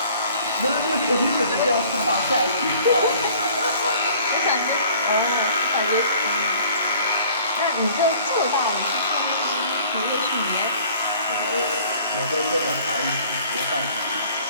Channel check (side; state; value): both; inverted; correlation -0.53